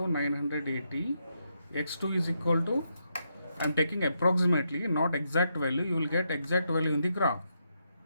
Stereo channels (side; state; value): both; inverted; correlation -0.81